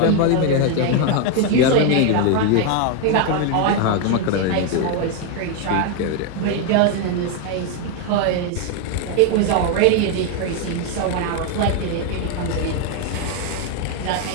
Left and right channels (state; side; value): different; both; correlation 0.01